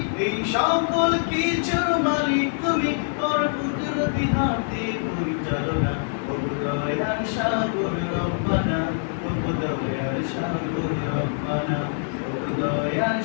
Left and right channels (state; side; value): silent; right; 60 dB below the other